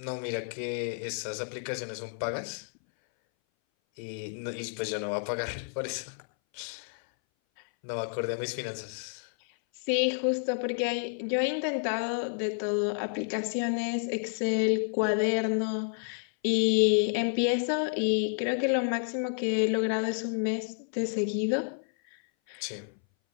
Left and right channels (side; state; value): right; silent; 58 dB below the other